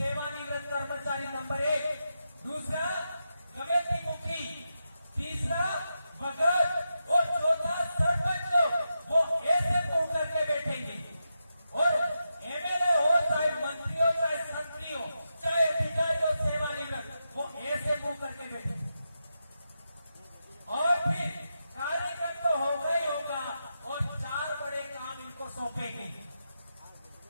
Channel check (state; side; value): inverted; both; correlation -0.87